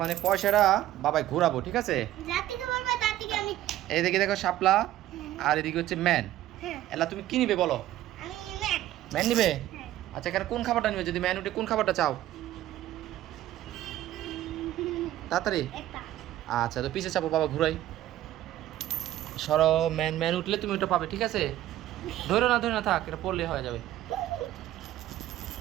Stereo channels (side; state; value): left; quieter; 13.8 dB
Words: এই পয়সাটা বাবাই ঘোরাবো, ঠিক আছে? যার থেকে বলবে তার থেকে আমি। এইদিকে দেখো শাপলা, আর এদিকে হচ্ছে ম্যান। হ্যাঁ। এলা তুমি কি নিবে বলো? আমি ম্যান। ম্যান নিবে? হ্যাঁ। আচ্ছা এখানে কোন খাবারটা নিবে? যদি ম্যান উঠে কোন খাবারটা চাও তাড়াতাড়ি? একটা। আচ্ছা তো পিছে চাপো, বাবা ঘুরাই। সরো, ম্যান ম্যান উঠলে তুমি ওটা পাবে, ঠিক আছে? ধরে না থাক, এটা পড়লে হয়ে যাবে।